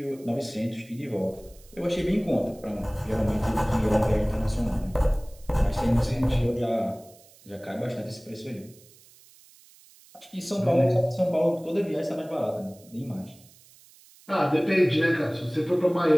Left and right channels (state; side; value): noise; right; hiss, 26 dB below the sound